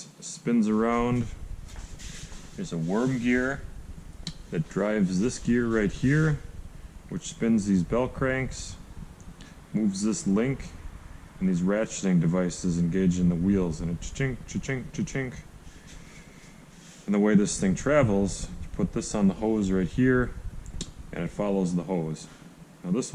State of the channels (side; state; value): both; identical; correlation 1.00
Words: spins around. There's a worm gear that drives this gear right here, which spins these bell cranks, moves this link, and these ratcheting devices engage in the wheels, and it cha-chink, cha-chink, cha-chink. And the way this thing travels, you put this on the hose right here, and it follows the hose. Now this